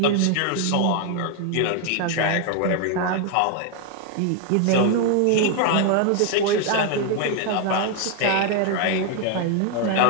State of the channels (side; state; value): both; different; correlation 0.01